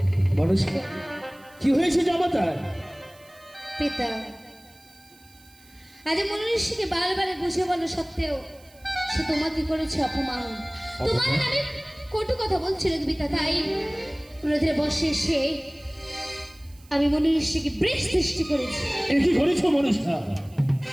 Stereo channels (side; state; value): right; noise; hiss, 27 dB below the sound